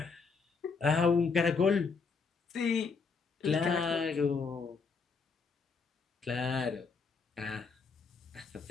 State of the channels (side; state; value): right; quieter; 5.0 dB